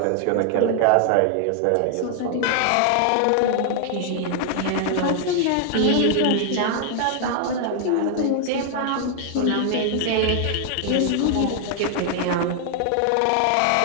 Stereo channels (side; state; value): both; different; correlation 0.00